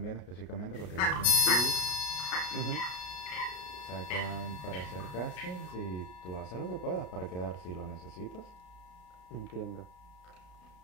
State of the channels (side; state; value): right; late; 33 ms